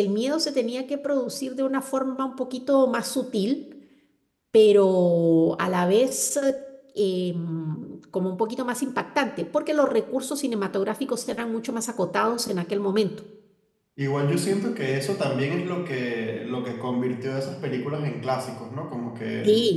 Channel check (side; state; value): both; identical; correlation 1.00